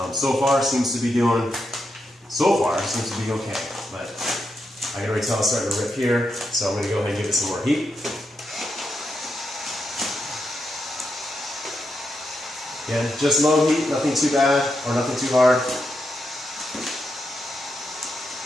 So far seems to be okay, but I can already tell it's starting to rip here, so I'm going to go ahead and give it some more heat. Again, just low heat, nothing too bad or nothing too hard.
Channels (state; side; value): normal; both; correlation 0.84